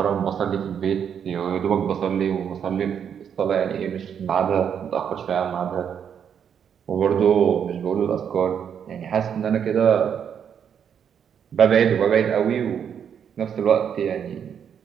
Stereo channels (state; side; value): quieter; left; 8.0 dB